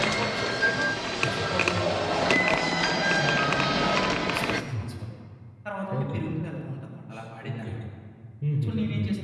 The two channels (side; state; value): both; identical; correlation 1.00